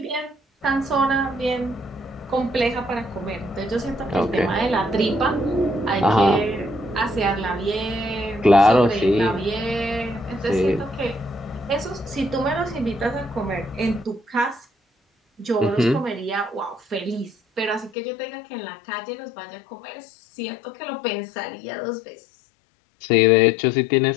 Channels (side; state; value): right; drops out; at 17.9 s